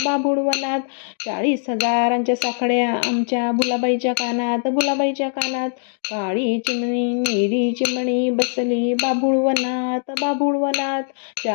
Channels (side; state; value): right; silent; digital silence